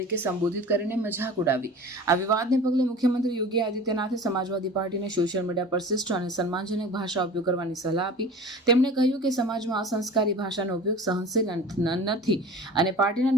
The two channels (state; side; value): normal; both; correlation 0.39